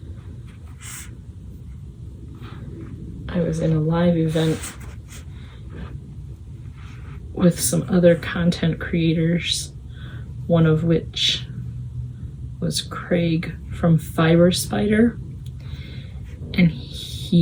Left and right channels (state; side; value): identical; both; correlation 1.00